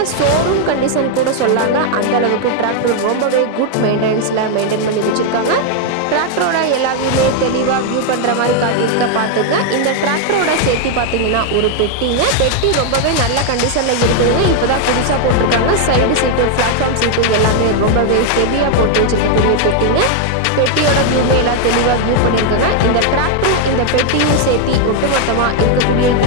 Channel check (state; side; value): different; both; correlation 0.00